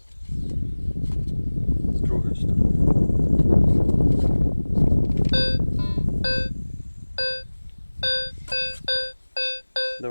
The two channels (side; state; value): both; inverted; correlation -1.00